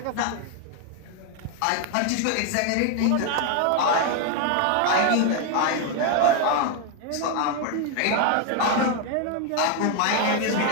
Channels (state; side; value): different; both; correlation 0.01